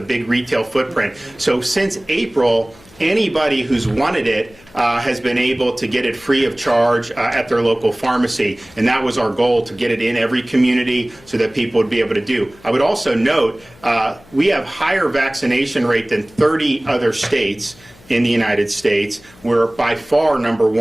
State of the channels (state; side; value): noise; left; hum, 26 dB below the sound